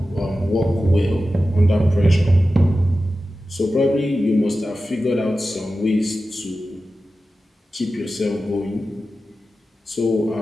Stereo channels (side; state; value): both; normal; correlation 0.93